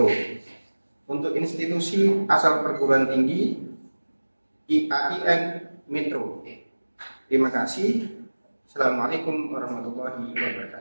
Untuk institusi asal perguruan tinggi IAIN Metro. Terima kasih. Assalamualaikum warahmatullahi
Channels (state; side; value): inverted; both; correlation -1.00